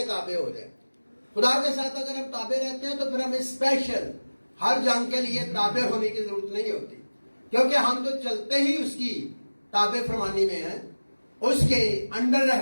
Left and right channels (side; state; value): both; inverted; correlation -1.00